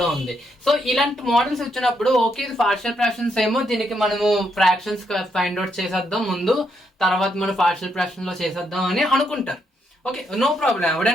ఉంది. సో ఇలాంటి మోడల్స్ వచ్చినప్పుడు ఓకే, ఇది పార్షియల్ ఫ్రాక్షన్స్ ఏమో, దీనికి మనము ఫ్రాక్షన్స్ ఫైండ్ అవుట్ చేసేద్దాం ముందు, తర్వాత మనం పార్షియల్ ఫ్రాక్షన్ లో చేసేద్దాం అని అనుకుంటారు. ఓకే, నో ప్రాబ్లం,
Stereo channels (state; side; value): normal; both; correlation 0.77